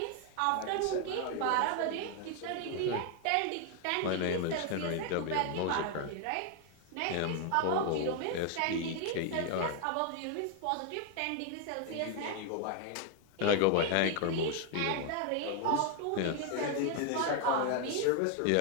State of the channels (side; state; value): both; different; correlation 0.01